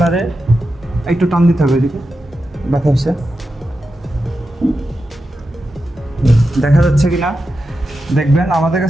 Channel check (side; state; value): both; normal; correlation 0.90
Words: একটু টান দিতে হবে, এদিকে দেখা হচ্ছে, দেখা যাচ্ছে কিনা দেখবেন। আমাদের